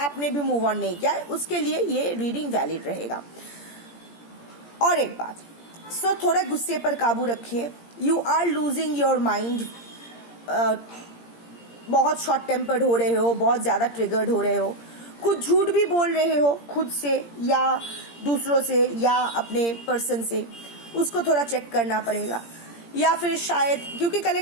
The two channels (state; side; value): late; right; 17 ms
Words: भी मूव ऑन नहीं किया है, उसके लिए ये रीडिंग वैलिड रहेगा। और एक बात, थोड़ा गुस्से पर काबू रखिए। You are losing your mind. बहुत शॉर्ट टेम्पर्ड हो रहे हो, बहुत ज्यादा ट्रिगर्ड हो रहे हो, कुछ झूठ भी बोल रहे हो खुद से या दूसरों से या अपने पर्सन से, उसको थोड़ा चेक करना पड़ेगा। या फिर शायद, क्योंकि